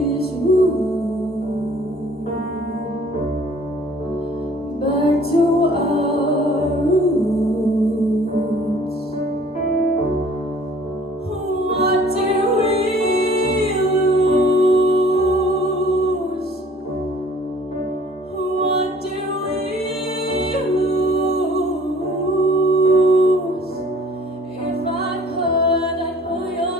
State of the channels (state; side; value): normal; both; correlation 0.53